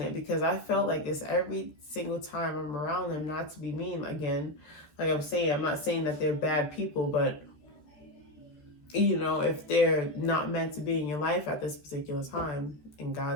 it, because I felt like this every single time I'm around them. Not to be mean again, like I'm saying, I'm not saying that they're bad people, but if they're not meant to be in your life at this particular time, and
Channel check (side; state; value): right; late; 13 ms